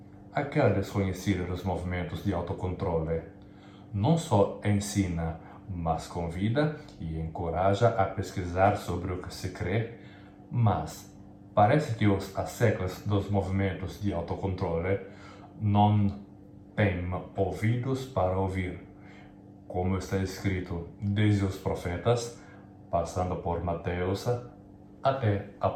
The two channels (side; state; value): both; identical; correlation 1.00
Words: aquela desconhecida dos movimentos de autocontrole, não só ensina, mas convida e encoraja a pesquisar sobre o que se crê, mas parece que os asseclas dos movimentos de autocontrole não têm ouvidos para ouvir, como está escrito desde os profetas, passando por Mateus até